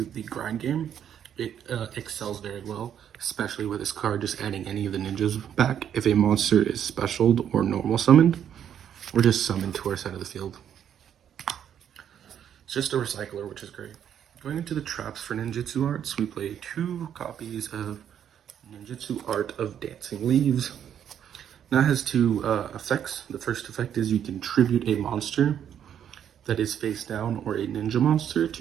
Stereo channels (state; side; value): quieter; left; 9.4 dB